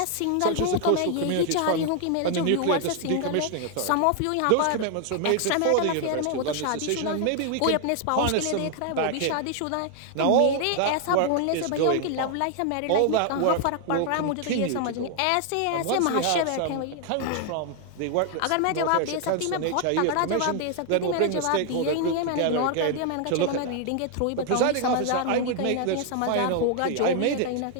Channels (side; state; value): both; different; correlation 0.00